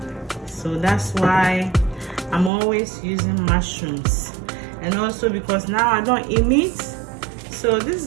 So that's why I'm always using mushrooms. And also because now I don't eat meat, so this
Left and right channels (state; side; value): drops out; left; at 2.5 s